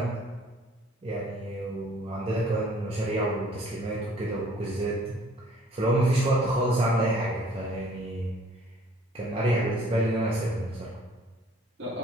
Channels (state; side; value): normal; both; correlation 0.57